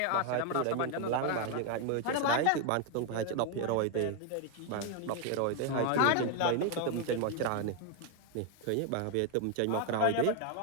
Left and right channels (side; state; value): both; different; correlation 0.01